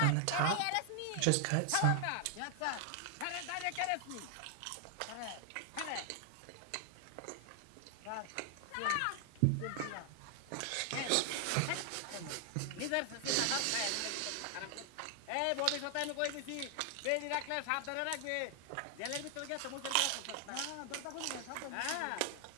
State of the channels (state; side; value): different; both; correlation 0.00